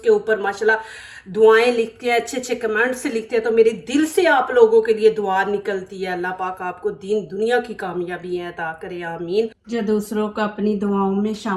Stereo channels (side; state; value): both; identical; correlation 1.00